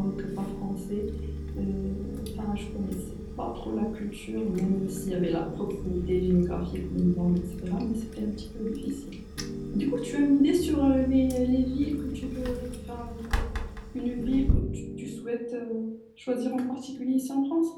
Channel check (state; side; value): identical; both; correlation 1.00